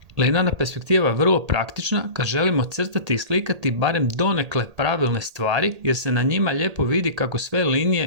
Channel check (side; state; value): left; late; 1.8 ms